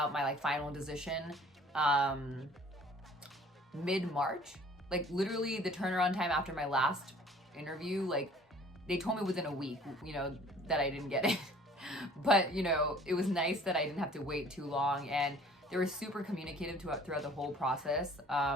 my like final decision mid-March. Like literally the turnaround time after my last interview, like they told me within a week, you know, that I didn't get it. But, you know, it was nice that I didn't have to wait too long, and they were super communicative throughout the whole process.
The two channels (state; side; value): normal; both; correlation 0.52